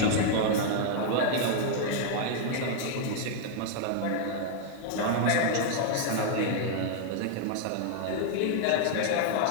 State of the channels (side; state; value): both; different; correlation 0.00